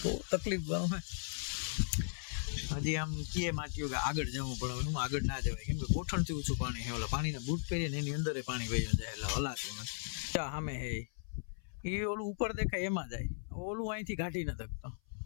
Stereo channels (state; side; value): silent; right; 53 dB below the other